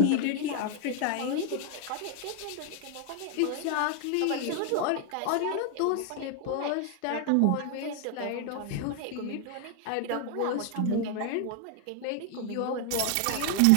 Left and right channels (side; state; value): both; different; correlation 0.00